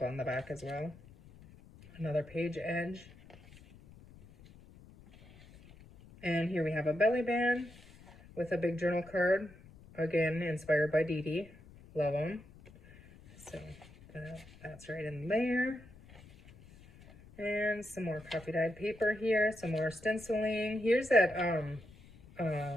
on the back as well. Another page edge. And here we have a belly band with a big journal card, again inspired by Dee Dee. Love them. So that's right in there. And some more coffee dyed paper here, some more stenciling. Here's that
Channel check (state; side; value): noise; left; rumble, 22 dB below the sound